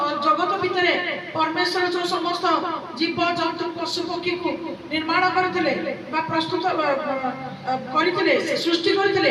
ଜଗତ ଭିତରେ ପରମେଶ୍ୱର ଯୋଉ ସମସ୍ତ ଜୀବ ଜନ୍ତୁ ପଶୁ ପକ୍ଷୀକୁ ନିର୍ମାଣ କରିଥିଲେ ବା ପ୍ରସ୍ତୁତ କରିଥିଲେ, ସୃଷ୍ଟି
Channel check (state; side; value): identical; both; correlation 1.00